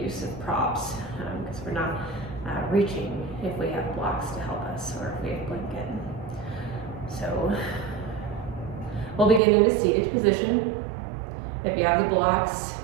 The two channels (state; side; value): drops out; left; at 9.4 s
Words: use of props because we're not reaching if we have blocks to help us or if we have blanket. So we'll begin in a seated position. If you have the blocks,